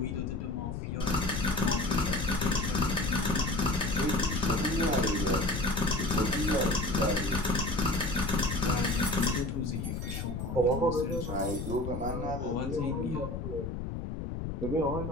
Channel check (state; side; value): noise; left; rumble, 5 dB below the sound